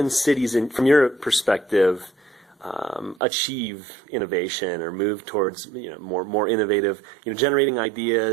cities, from your perspective, achieve innovation or move towards more innovative, generating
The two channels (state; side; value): drops out; left; at 3.2 s